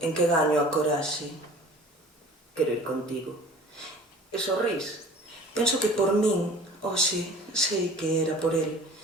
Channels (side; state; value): both; normal; correlation 0.45